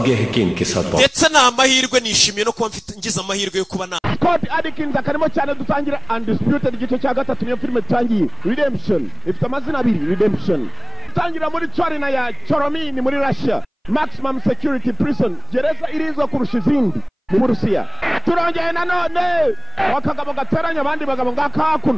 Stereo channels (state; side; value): identical; both; correlation 1.00